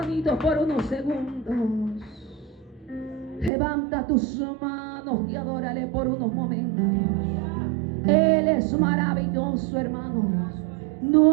por unos segundos. Levanta tus manos y adórale por unos momentos. Él es maravilloso, hermanos.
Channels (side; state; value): left; drops out; at 3.5 s